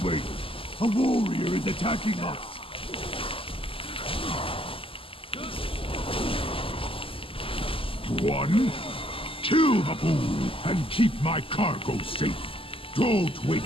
a warrior is attacking us. One, kill the fool and keep my cargo safe. Don't wake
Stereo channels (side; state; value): right; late; 0.26 ms